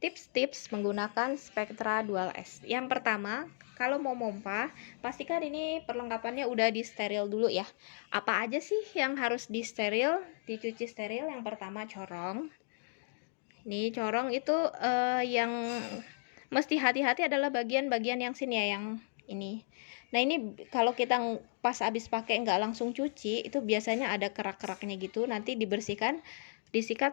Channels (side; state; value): right; silent; digital silence